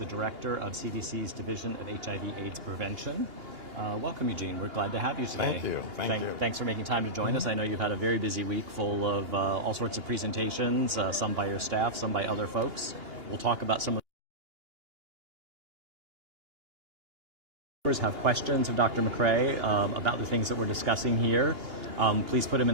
director of CDC's Division of HIV/AIDS Prevention. Welcome, Eugene. We're glad to have you today. Thank you. Thank you. Thanks for making time to join us. I know you've had a very busy week full of all sorts of presentations, some by your staff, some by other folks. We'll talk about some of have questions of Dr. McCray about the things that we're discussing here. Please put them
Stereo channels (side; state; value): left; late; 2.8 ms